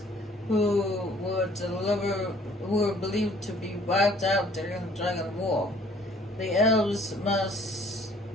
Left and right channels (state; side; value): normal; both; correlation 0.57